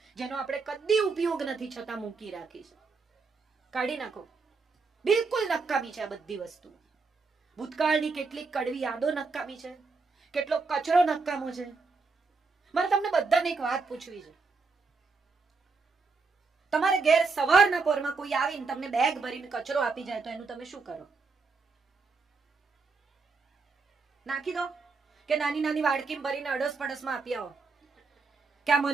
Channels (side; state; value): left; quieter; 4.4 dB